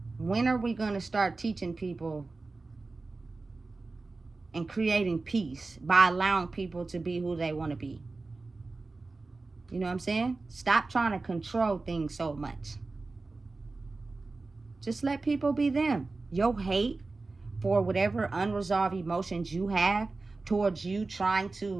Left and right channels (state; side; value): quieter; left; 3.6 dB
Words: when are we going to start teaching people and creating peace by allowing people to be who they want to be? You know what I'm saying? Stop trying to control things so much. Just let people be them. Your hate for whatever unresolved emotions you have towards you trying